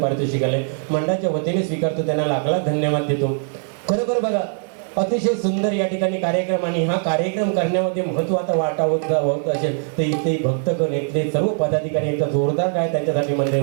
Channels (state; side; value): silent; left; 60 dB below the other